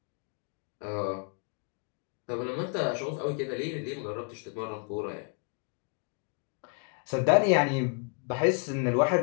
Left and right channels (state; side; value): quieter; right; 36.8 dB